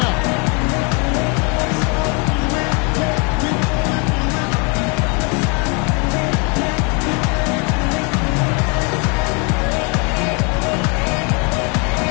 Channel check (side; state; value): right; quieter; 33.7 dB